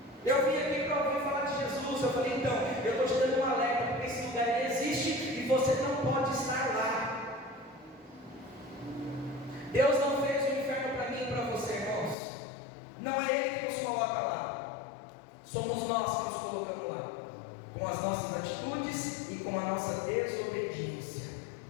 eu vim aqui para ouvir falar de Jesus. Eu falei: então, eu estou te dando um alerta, porque esse lugar existe e você não pode estar lá. Deus não fez o inferno para mim e para você, irmãos. Não é Ele que nos coloca lá, somos nós que nos colocamos lá, com as nossas atitudes e com a nossa desobediência.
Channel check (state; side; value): drops out; right; at 12.2 s